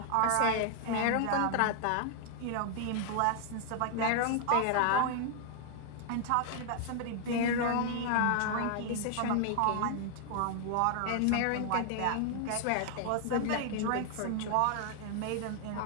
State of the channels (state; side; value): different; both; correlation 0.00